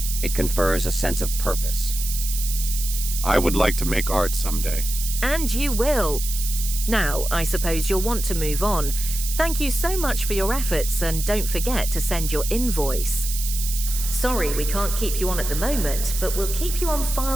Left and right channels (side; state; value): right; noise; hiss, 6 dB below the sound